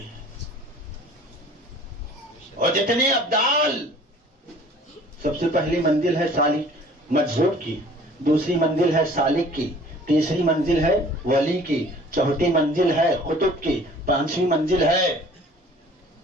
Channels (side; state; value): both; normal; correlation 0.50